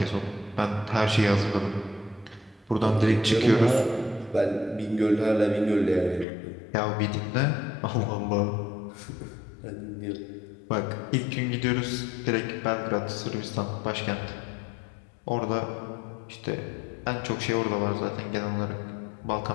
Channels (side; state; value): right; drops out; at 6.2 s